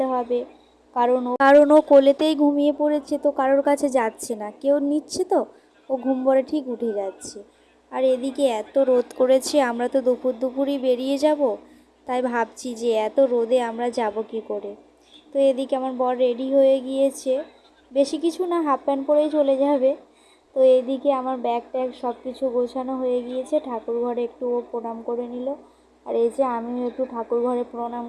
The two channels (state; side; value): identical; both; correlation 1.00